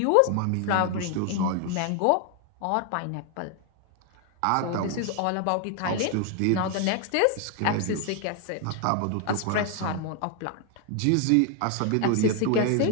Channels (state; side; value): different; both; correlation 0.01